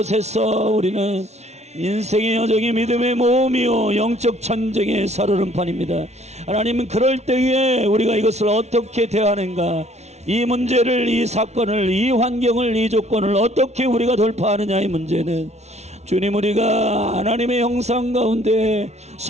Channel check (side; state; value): left; late; 0.32 ms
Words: 우리는 인생의 여정이 믿음의 모험이요 영적 전쟁의 살얼음판입니다. 하나님은 그럴 때에 우리가 이것을 어떻게 대하는가, 이 문제를, 이 사건을, 이 환경을, 이 조건을 어떻게 우리가 돌파하느냐의 문제는 주님, 우리가 하나님의 형상 가운데